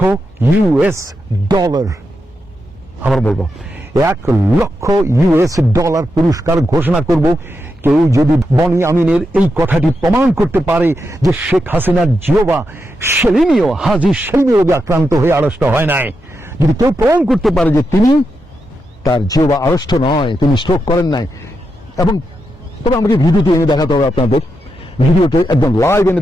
আবার বলবো $1,00,000 পুরস্কার ঘোষণা করব কেউ যদি বনি আমিনের এই কথাটি প্রমাণ করতে পারে যে শেখ হাসিনার জিওবা সেলিমীয়, হাজী সেলিমীয় রোগে আক্রান্ত হয়ে আড়ষ্ট হয় নাই। যদি কেউ প্রমাণ করতে পারে যে তিনি তার জিওবা আড়ষ্ট নয়, তিনি স্ট্রোক করেন নাই, এবং তবে আমাকে ভিডিওটি এনে দেখাতে হবে, আপনাদের ভিডিওতে একদম লাইভ এনে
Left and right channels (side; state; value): both; normal; correlation 0.85